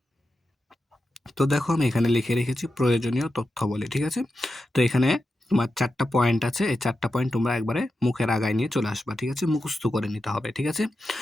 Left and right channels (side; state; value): both; normal; correlation 0.90